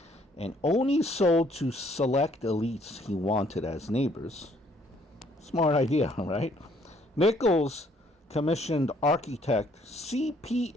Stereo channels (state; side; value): normal; both; correlation 0.64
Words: and only sold to select elites he wanted as neighbors. Smart idea, right? Nichols commissioned architect